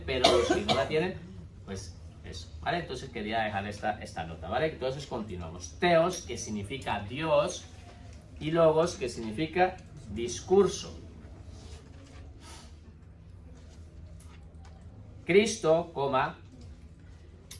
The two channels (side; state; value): both; identical; correlation 1.00